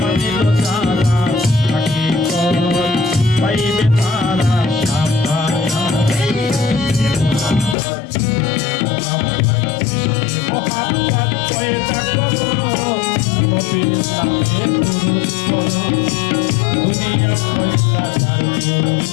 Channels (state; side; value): drops out; right; at 7.8 s